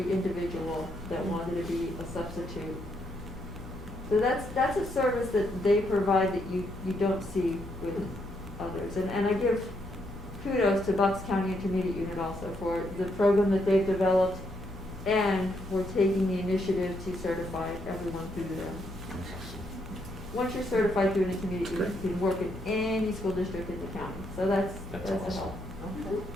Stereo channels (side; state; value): both; normal; correlation 0.76